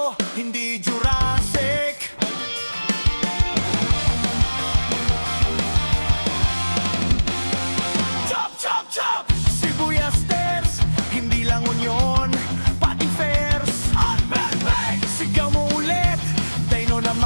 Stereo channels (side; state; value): both; inverted; correlation -1.00